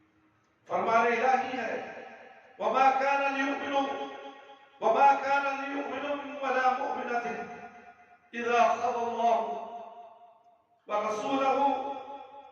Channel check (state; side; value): identical; both; correlation 1.00